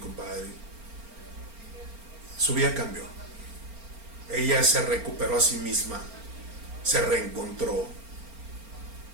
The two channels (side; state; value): left; late; 4.3 ms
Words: Su vida cambió. Ella se recuperó a sí misma, se reencontró,